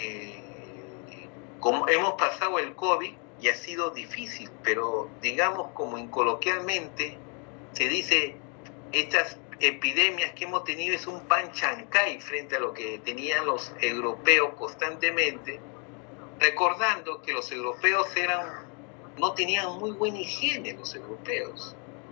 como hemos pasado el COVID y ha sido difícil, pero digamos como coloquialmente se dice, estas epidemias que hemos tenido es un pan chancay frente a lo que tenían los europeos constantemente, recordando que los europeos no tenían muy buena higiene, los europeos.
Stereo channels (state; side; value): quieter; right; 36.6 dB